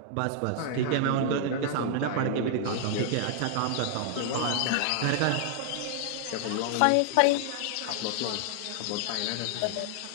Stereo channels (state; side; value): different; both; correlation 0.00